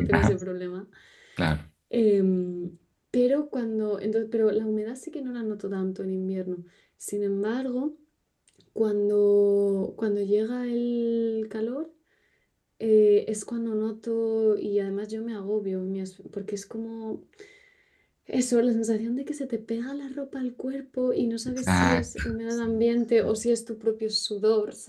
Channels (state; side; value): identical; both; correlation 1.00